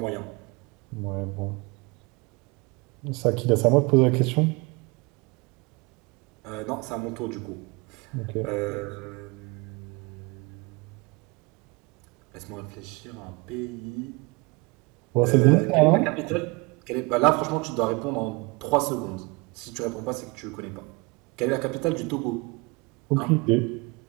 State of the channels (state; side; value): quieter; left; 26.5 dB